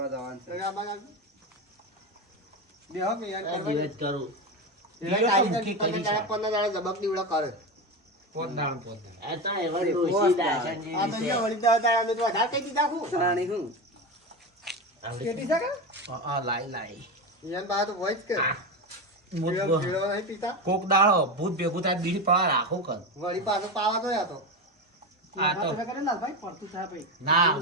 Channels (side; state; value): both; normal; correlation 0.19